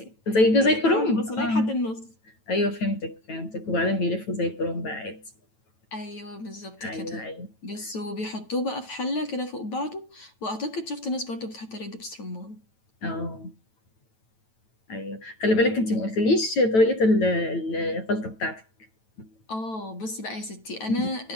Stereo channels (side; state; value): right; late; 9.1 ms